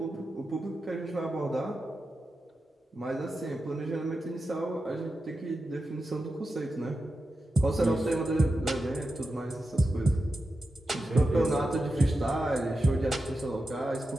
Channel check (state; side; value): normal; both; correlation 0.90